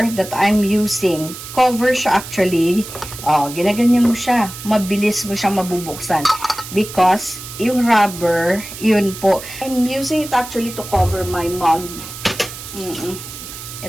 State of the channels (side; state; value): right; noise; hiss, 12 dB below the sound